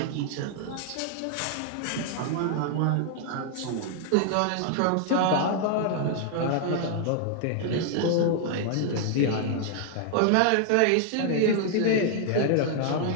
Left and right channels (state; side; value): different; both; correlation 0.00